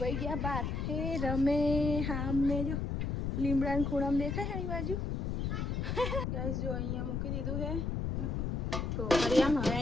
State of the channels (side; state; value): left; noise; rumble, 1 dB below the sound